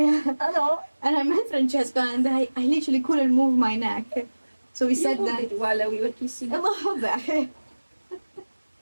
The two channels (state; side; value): inverted; both; correlation -1.00